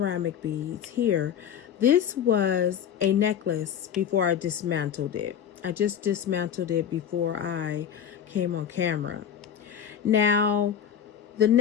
beads here, this was a necklace before I dismantled it. I just dismantled it before I came on camera. Now, the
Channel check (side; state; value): right; quieter; 8.9 dB